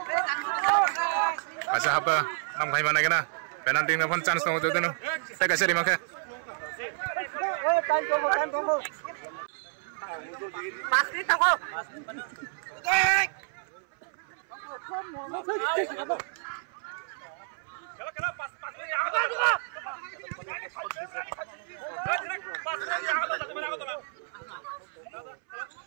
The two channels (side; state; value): left; silent; 58 dB below the other